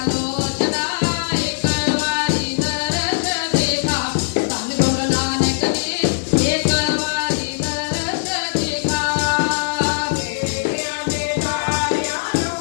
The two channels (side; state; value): right; silent; 65 dB below the other